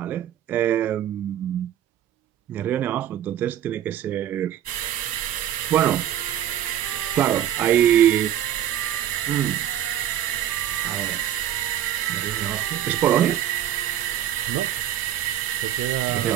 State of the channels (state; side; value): quieter; left; 11.2 dB